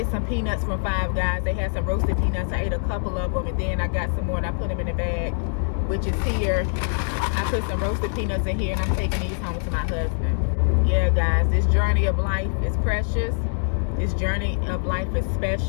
some peanuts from Five Guys. They had some roasted peanuts. I ate a couple of them, and then I got some more, and I put them in the bag, which is here. I put some roasted peanuts in here, and I'm taking these home to my husband. Yeah, guys, this journey of life is precious. This journey of life is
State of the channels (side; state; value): right; silent; digital silence